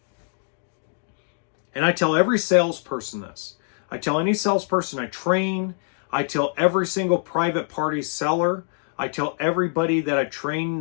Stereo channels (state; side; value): silent; right; digital silence